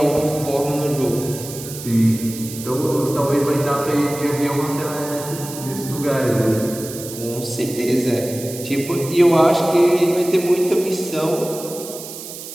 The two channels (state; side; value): noise; right; hiss, 12 dB below the sound